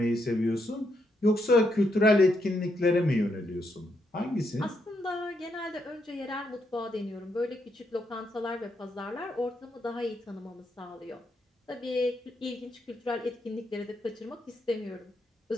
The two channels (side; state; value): both; normal; correlation 0.78